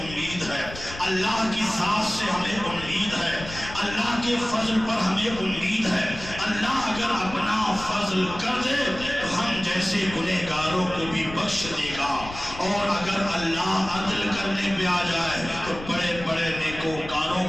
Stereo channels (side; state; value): left; noise; rumble, 13 dB below the sound